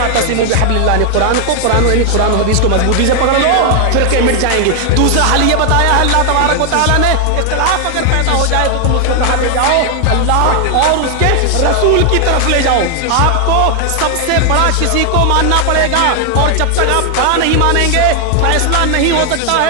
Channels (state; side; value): different; both; correlation 0.00